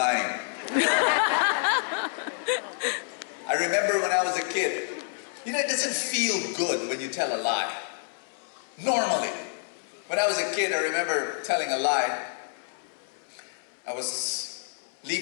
I remember when I was a kid, you know, it doesn't feel good when you tell a lie. Normally. When I was a kid, I remember telling a lie. I was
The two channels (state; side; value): silent; right; 59 dB below the other